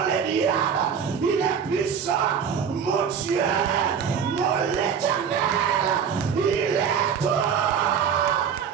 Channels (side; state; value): left; quieter; 7.3 dB